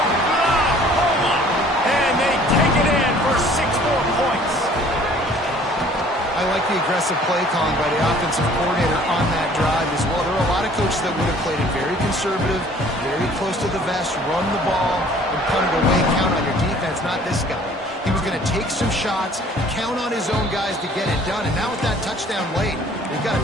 And they take it in for 6 more points. I like the aggressive aggressive play calling by the offensive coordinator on that drive as well. There are a lot of coaches that would have played it very conservative, very close to the vest, run the ball, and punt it away, count on your defense. Not this guy. He was going to take some shots, count on his own guys to get it done, and now with that touchdown late, they've got a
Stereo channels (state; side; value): normal; both; correlation 0.54